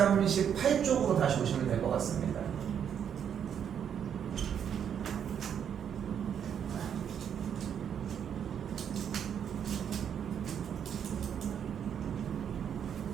다시 오시면 될 것 같습니다.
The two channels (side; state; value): left; quieter; 8.4 dB